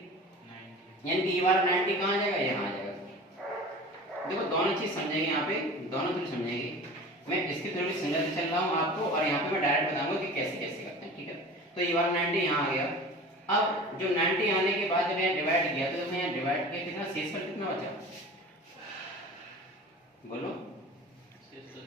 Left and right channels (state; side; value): normal; both; correlation 0.38